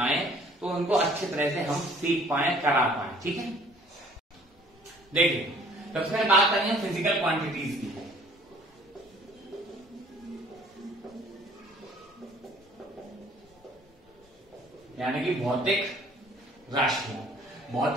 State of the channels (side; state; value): both; normal; correlation 0.55